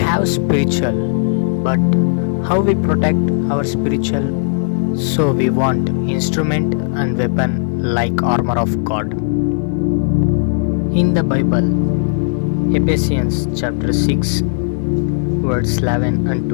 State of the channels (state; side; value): silent; right; digital silence